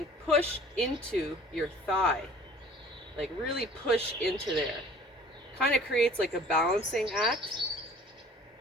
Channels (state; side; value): normal; both; correlation 0.49